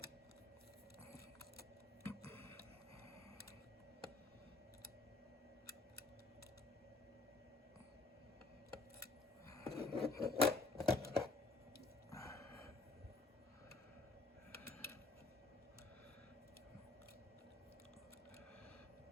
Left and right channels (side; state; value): right; quieter; 3.4 dB